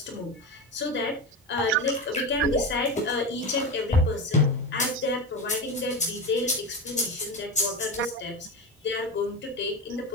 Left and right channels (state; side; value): normal; both; correlation 0.21